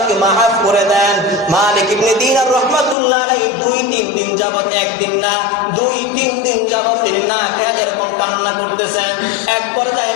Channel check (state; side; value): drops out; right; at 3.0 s